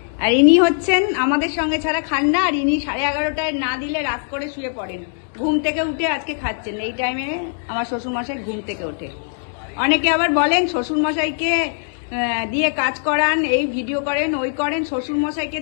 আর ইনি হচ্ছেন আমাদের সঙ্গে ছাড়া খান না, আর ইনি 11:30টায় না দিলে রাত করে শুয়ে পড়েন। ঘুম থেকে উঠে আজকে খাচ্ছেন এই টাইমে। আমার শ্বশুরমশাই ঘুম থেকে ওঠে। অনেকে আবার বলেন শ্বশুরমশাইকে দিয়ে কাজ করান, এই ভিডিও করেন, ওই করেন, শ্বশুরমশাইকে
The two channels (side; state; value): right; silent; digital silence